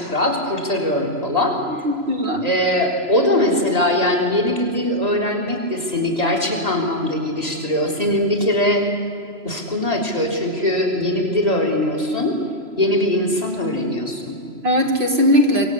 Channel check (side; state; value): left; late; 3.0 ms